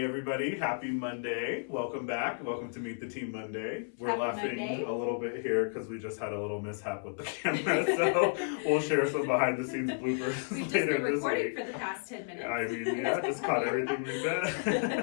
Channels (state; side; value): silent; right; 56 dB below the other